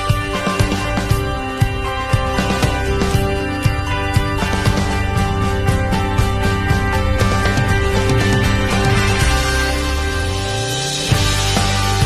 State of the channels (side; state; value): both; identical; correlation 1.00